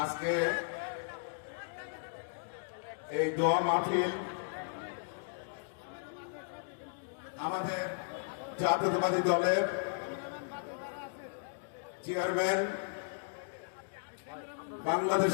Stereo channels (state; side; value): silent; right; digital silence